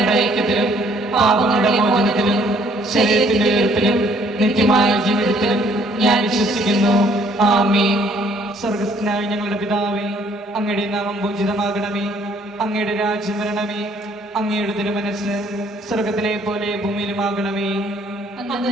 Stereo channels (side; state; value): both; normal; correlation 0.62